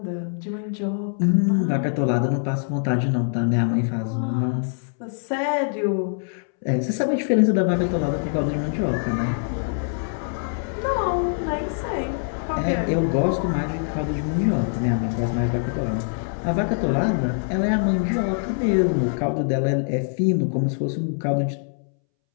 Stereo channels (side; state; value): right; silent; 63 dB below the other